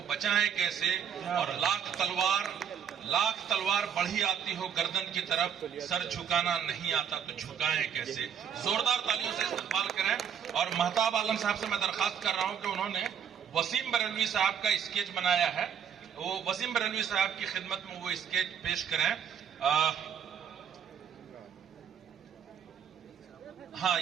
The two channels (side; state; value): left; quieter; 8.0 dB